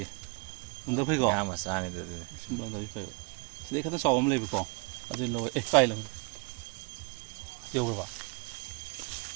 ꯂꯪꯗꯕ ꯐꯩꯀꯣ ꯉꯥ ꯃꯆꯥꯅꯤꯗ ꯑꯗꯨꯗꯤ ꯁꯨꯝ ꯂꯪꯗꯕꯤ ꯐꯩꯕ ꯁꯤꯗꯩ ꯈꯤꯇꯪ ꯆꯥꯎꯕ ꯑꯃ ꯂꯩꯕꯀꯣ ꯑꯗꯨ ꯂꯧꯋꯦ ꯀꯥꯏ ꯂꯪ ꯌꯧꯈ꯭ꯔꯕ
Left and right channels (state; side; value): quieter; left; 32.7 dB